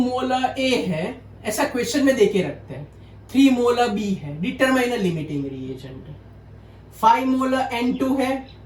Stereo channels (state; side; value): identical; both; correlation 1.00